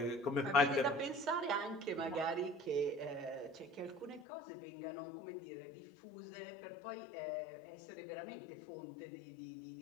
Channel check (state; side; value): drops out; right; at 4.2 s